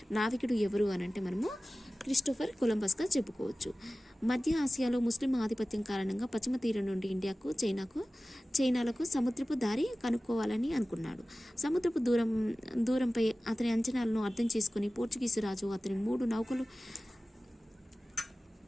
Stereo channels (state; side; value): normal; both; correlation 0.97